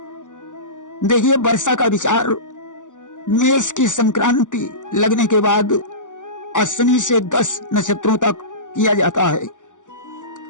देखिए, वर्षा का विचार मेष की संक्रांति लगने के बाद अश्विनी से 10 नक्षत्रों तक किया जाता है।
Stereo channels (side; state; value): right; late; 0.87 ms